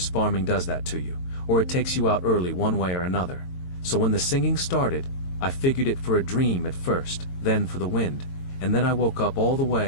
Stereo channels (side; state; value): right; late; 22 ms